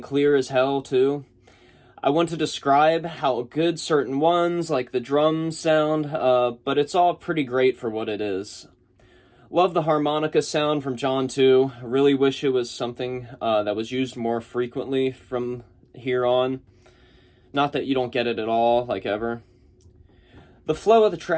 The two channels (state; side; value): identical; both; correlation 1.00